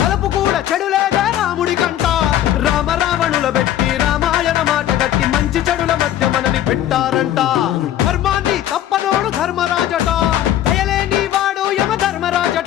తలపు కూడా చెడు లేదే రాముడి కంట. రామ రావణుల పెట్టి రామాయణ మాట గట్టి మంచి చెడుల మధ్య మనని పెట్టారంట. ధర్మాన్ని తప్పనోడు ధర్మరాజట, దయలేని వాడు యమ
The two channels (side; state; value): right; quieter; 12.1 dB